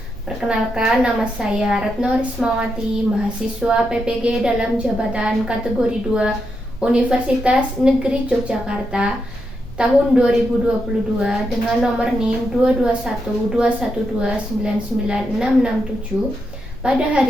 Perkenalkan, nama saya Retno Rismawati, mahasiswa PPG dalam jabatan kategori 2 Universitas Negeri Yogyakarta tahun 2022 dengan nomor NIM 22121299667. Pada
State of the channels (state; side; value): normal; both; correlation 0.83